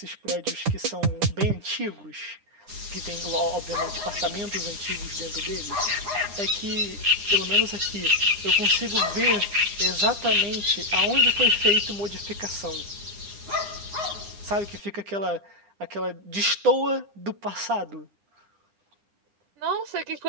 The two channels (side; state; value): left; late; 9.6 ms